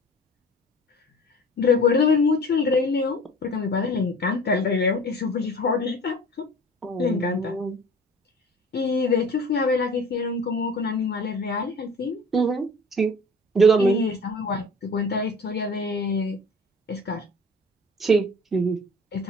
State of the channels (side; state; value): both; normal; correlation 0.44